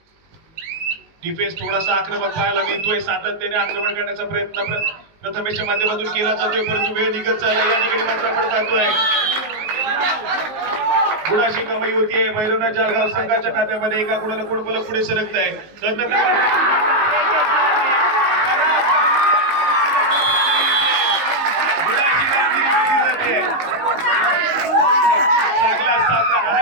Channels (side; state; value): left; late; 19 ms